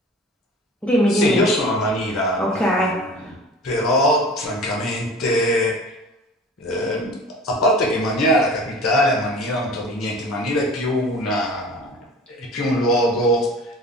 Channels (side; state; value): both; normal; correlation 0.41